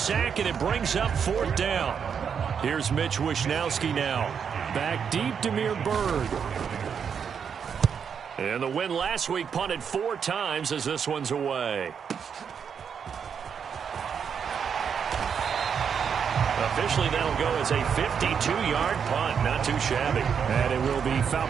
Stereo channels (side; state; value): left; quieter; 7.1 dB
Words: and it brings up 4th down. Here's Mitch Wishnowski now. Back deep, Demir Bird. And the win last week punted 4 times as this one's away. Officially, that'll go as a 52-yard punt. Not too shabby. And it will be